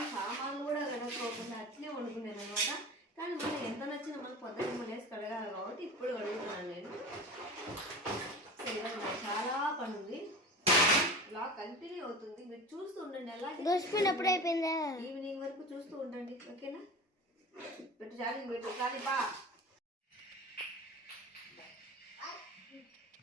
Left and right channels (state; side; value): normal; both; correlation 0.33